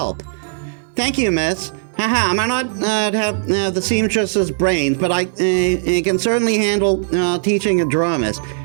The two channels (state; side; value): silent; left; 59 dB below the other